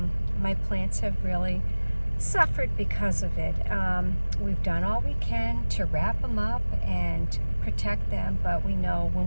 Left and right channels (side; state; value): both; inverted; correlation -1.00